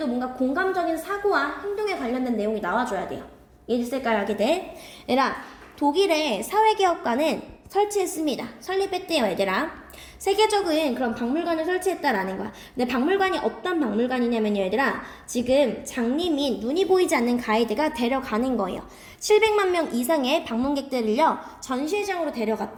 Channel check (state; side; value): identical; both; correlation 1.00